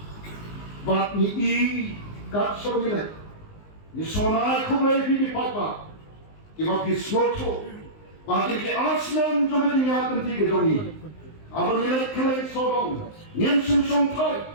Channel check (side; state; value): right; late; 19 ms